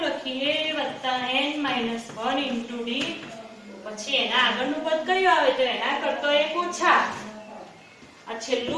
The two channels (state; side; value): identical; both; correlation 1.00